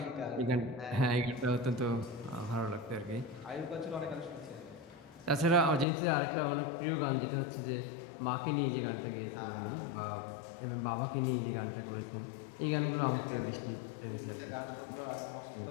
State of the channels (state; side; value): drops out; right; at 5.9 s